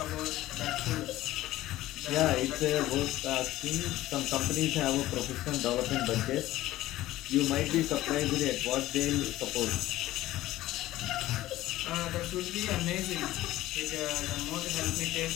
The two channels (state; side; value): quieter; right; 15.8 dB